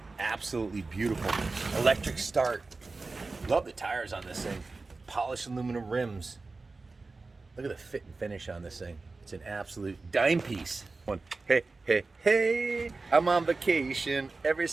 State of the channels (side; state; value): left; quieter; 3.7 dB